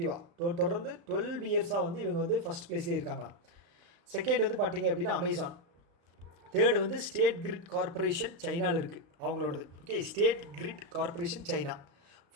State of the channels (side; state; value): left; late; 35 ms